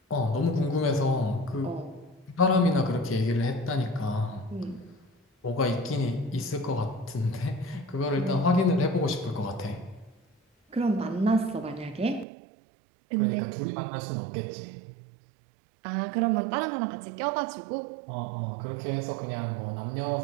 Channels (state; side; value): drops out; left; at 12.2 s